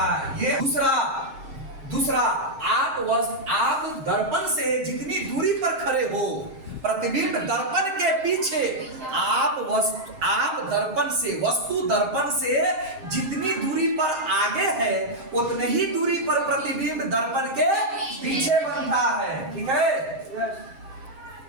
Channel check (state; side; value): late; left; 7.6 ms